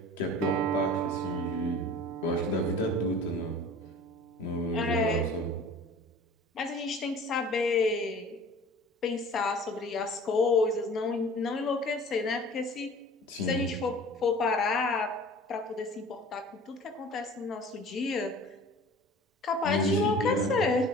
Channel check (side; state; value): both; normal; correlation 0.44